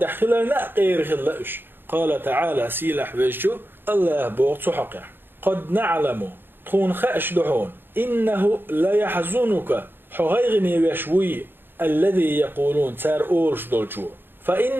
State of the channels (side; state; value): left; late; 0.098 ms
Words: خلالنا غير خلاش قال تعالى سيلح ويشو الله بوغ تحقع قد نعلم تخون خأش دحون إنه لا يحزنك حغيغني ويشوي الذي يقولون تار أورش دولشو